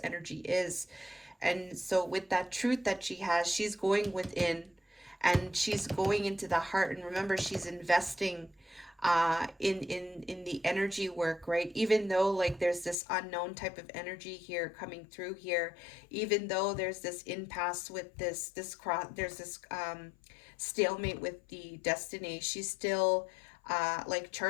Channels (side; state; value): right; drops out; at 13.0 s